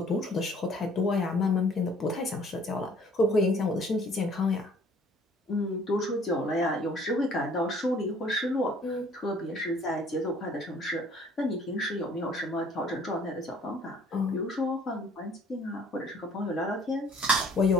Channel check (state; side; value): normal; both; correlation 0.56